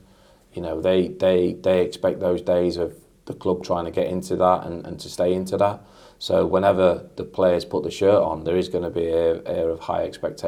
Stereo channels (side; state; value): both; identical; correlation 1.00